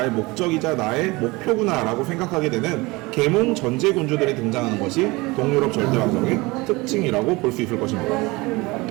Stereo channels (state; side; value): quieter; left; 23.2 dB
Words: 목적이자 나의 목표구나 라고 생각하게 되는 계몽 전제군주들이 등장하는 것이 동유럽 절대왕정의 특징이라고 볼 수 있을 것입니다.